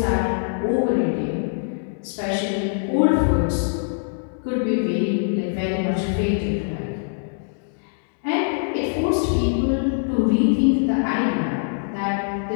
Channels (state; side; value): silent; right; digital silence